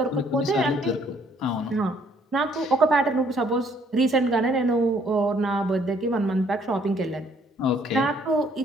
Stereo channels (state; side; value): normal; both; correlation 0.64